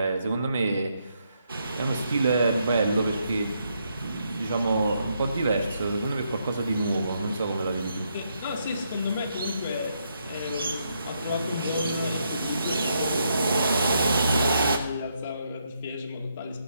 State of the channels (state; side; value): inverted; both; correlation -0.77